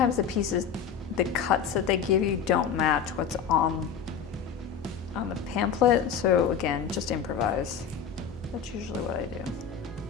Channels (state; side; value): quieter; right; 7.2 dB